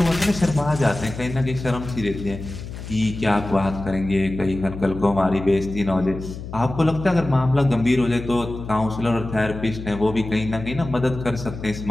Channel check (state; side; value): noise; left; hum, 10 dB below the sound